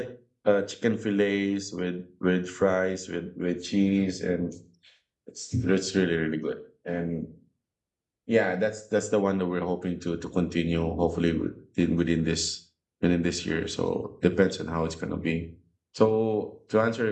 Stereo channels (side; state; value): both; identical; correlation 1.00